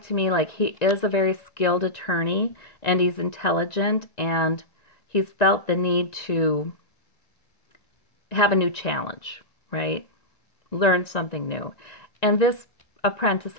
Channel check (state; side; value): late; right; 1.9 ms